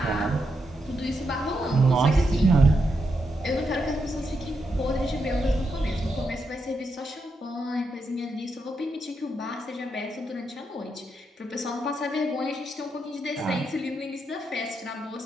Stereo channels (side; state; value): both; normal; correlation 0.83